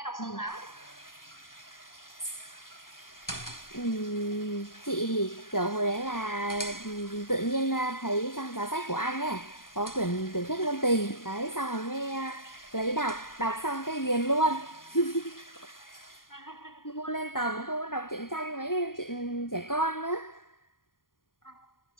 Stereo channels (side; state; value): right; late; 0.91 ms